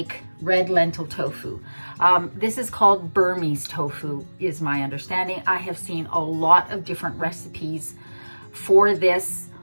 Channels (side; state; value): both; inverted; correlation -1.00